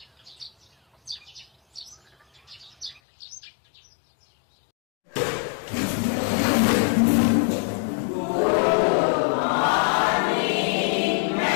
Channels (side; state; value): right; drops out; at 3.0 s